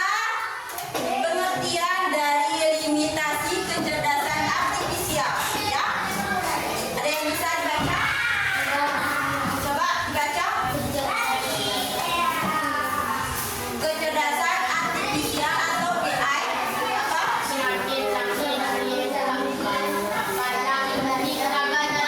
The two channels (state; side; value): identical; both; correlation 1.00